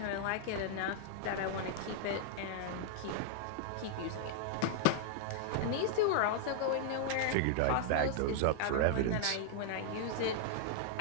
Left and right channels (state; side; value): different; both; correlation -0.01